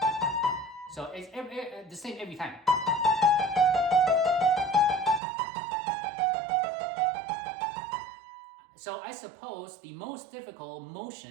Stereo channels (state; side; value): drops out; left; at 5.2 s